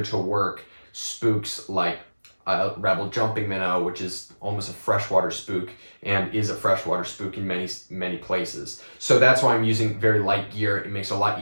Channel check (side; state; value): both; inverted; correlation -1.00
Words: to work spooks like Rebel jumping minnow, which is almost a freshwater spook and is a freshwater spook in many places. So that's why I'm using very light gear. It makes it a lot